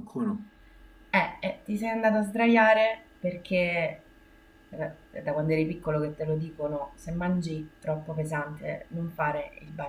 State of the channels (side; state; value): both; identical; correlation 1.00